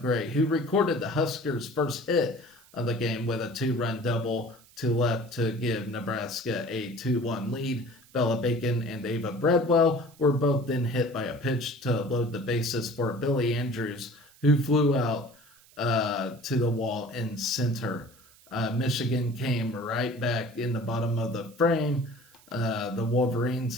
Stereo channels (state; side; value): noise; right; hiss, 26 dB below the sound